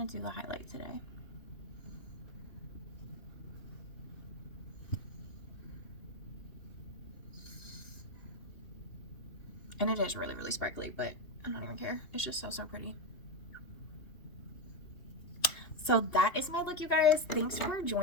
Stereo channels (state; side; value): late; right; 2.8 ms